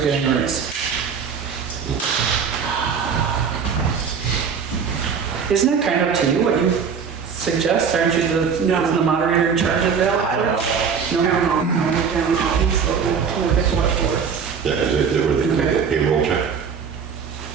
getting a raise. Isn't it kind of up to you what you suggest? Aren't you the moderator in charge of that? I don't know. Yeah, they were the payroll check.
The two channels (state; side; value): quieter; left; 6.4 dB